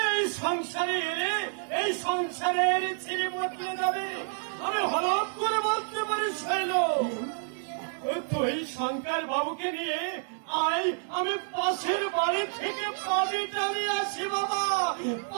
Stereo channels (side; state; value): left; silent; 59 dB below the other